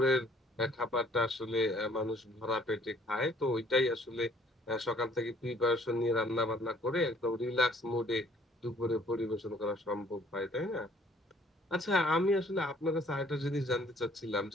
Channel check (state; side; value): normal; both; correlation 0.59